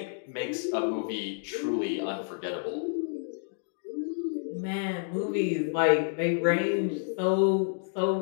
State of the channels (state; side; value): silent; right; digital silence